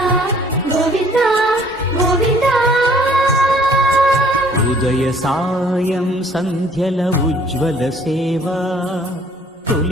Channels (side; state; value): both; normal; correlation 0.58